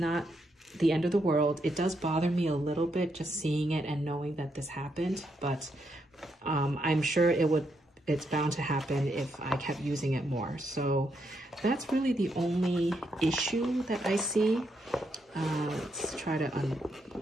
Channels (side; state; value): both; normal; correlation 0.79